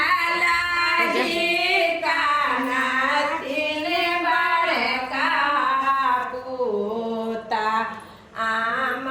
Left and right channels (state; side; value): identical; both; correlation 1.00